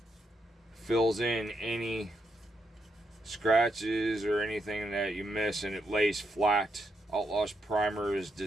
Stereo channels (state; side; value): normal; both; correlation 0.81